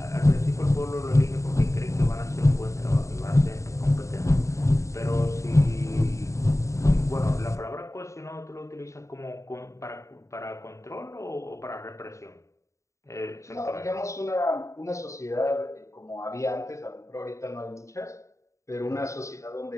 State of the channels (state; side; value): late; right; 0.15 ms